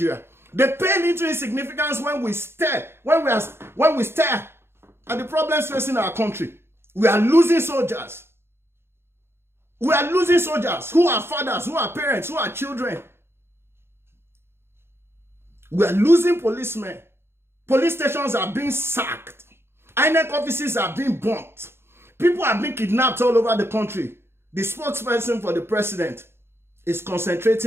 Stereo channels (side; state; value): left; late; 0.12 ms